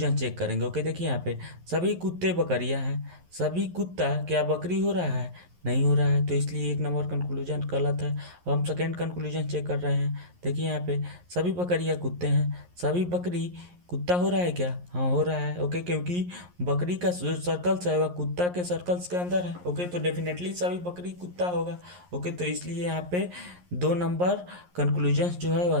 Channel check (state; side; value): late; left; 11 ms